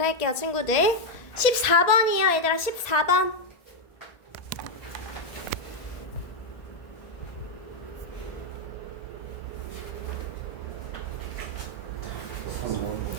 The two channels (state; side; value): late; right; 1.8 ms